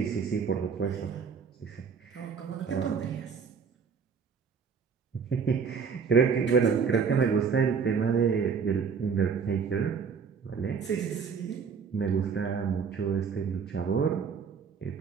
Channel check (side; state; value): left; quieter; 6.1 dB